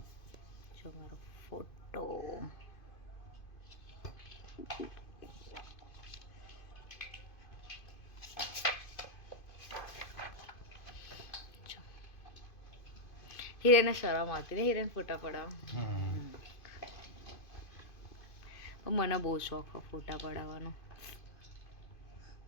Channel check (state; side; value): late; right; 2.5 ms